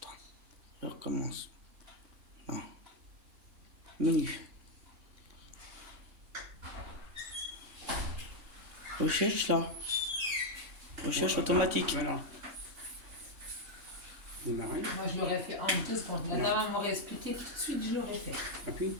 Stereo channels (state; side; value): late; left; 3.6 ms